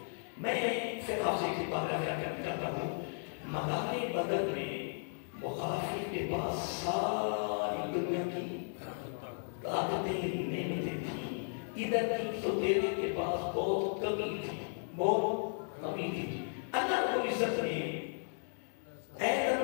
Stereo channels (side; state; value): right; silent; 54 dB below the other